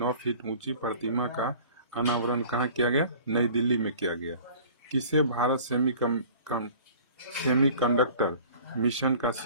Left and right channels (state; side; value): inverted; both; correlation -0.47